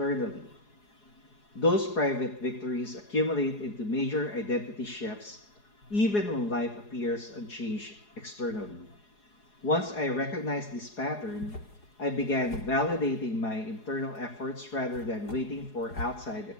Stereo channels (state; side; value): late; right; 4.8 ms